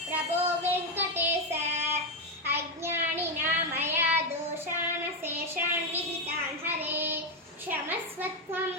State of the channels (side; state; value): both; normal; correlation 0.07